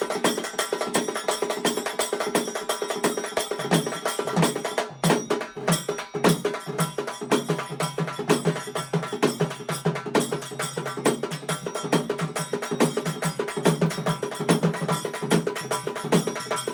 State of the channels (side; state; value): both; identical; correlation 1.00